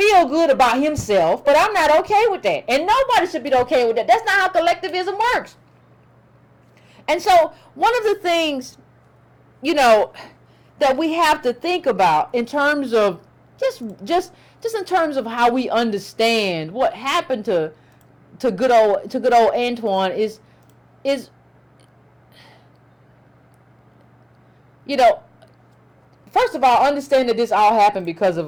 good about himself, but I'm not okay with that. And nobody should be okay with that. That's not how collectivism works. And so one of the things, that we have to think about in terms of just in terms of how we understand what happened to good old Antoine is first of all, understand that this all happened because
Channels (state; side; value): identical; both; correlation 1.00